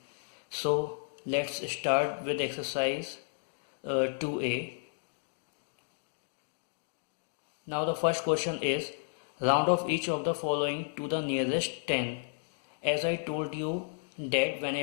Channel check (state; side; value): silent; right; digital silence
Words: So let's start with exercise 2a. Now the first question is round off each of the following to the nearest 10. As I told you that